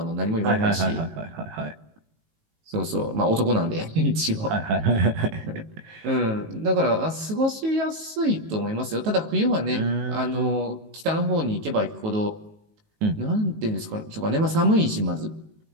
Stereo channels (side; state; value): left; late; 19 ms